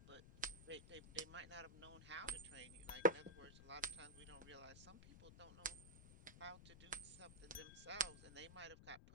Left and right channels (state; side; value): noise; left; rumble, 14 dB below the sound